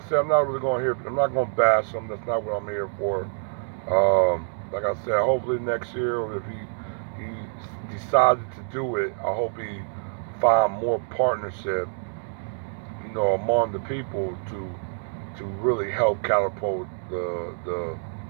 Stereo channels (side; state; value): left; silent; digital silence